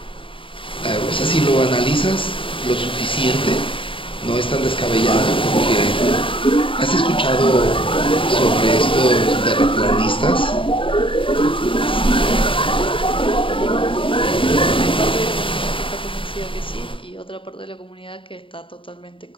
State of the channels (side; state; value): right; late; 0.25 ms